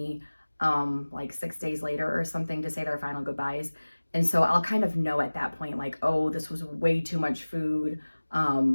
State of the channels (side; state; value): both; inverted; correlation -1.00